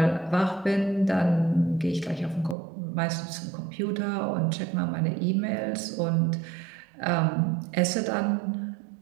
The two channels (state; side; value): drops out; left; at 2.6 s